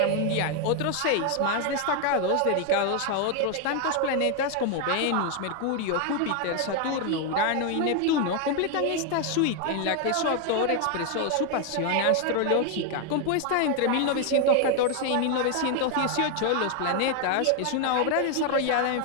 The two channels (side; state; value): both; different; correlation 0.01